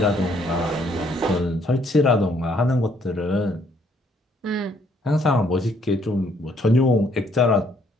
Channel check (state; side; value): normal; both; correlation 0.67